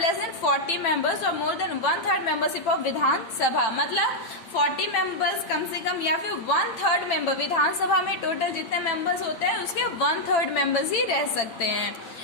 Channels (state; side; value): late; right; 8.8 ms